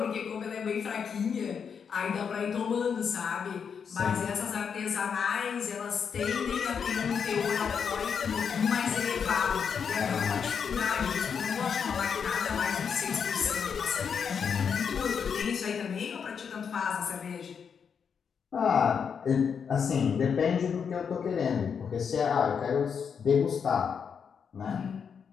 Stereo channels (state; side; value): quieter; right; 6.8 dB